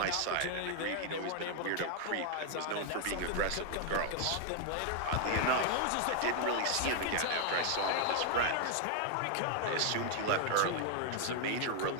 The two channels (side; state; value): both; different; correlation 0.00